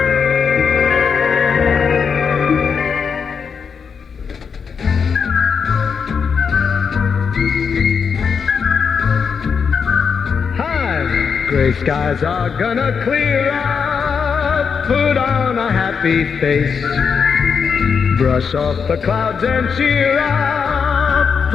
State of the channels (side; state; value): right; quieter; 6.2 dB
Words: Gray skies are gonna clear up. Put on a happy face. Brush off the clouds and cheer up.